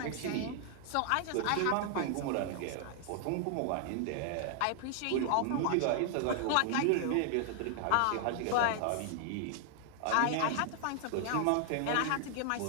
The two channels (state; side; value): different; both; correlation 0.00